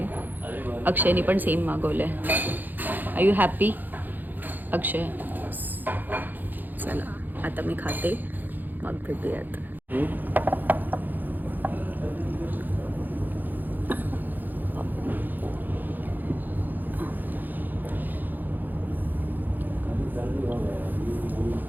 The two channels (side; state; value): left; late; 0.086 ms